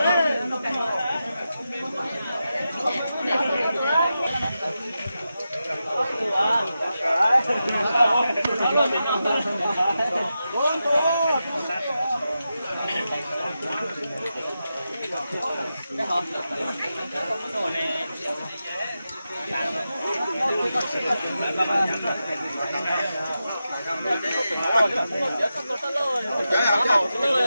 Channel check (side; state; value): both; inverted; correlation -0.90